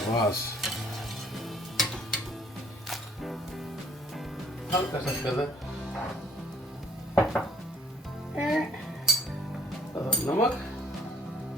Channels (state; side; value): normal; both; correlation 0.59